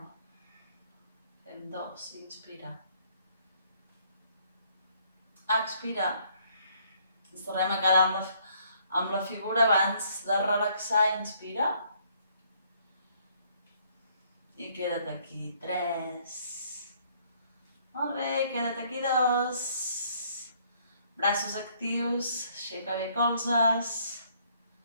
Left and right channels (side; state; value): both; inverted; correlation -0.65